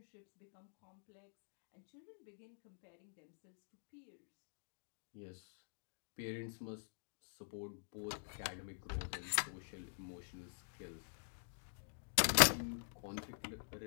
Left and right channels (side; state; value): right; silent; digital silence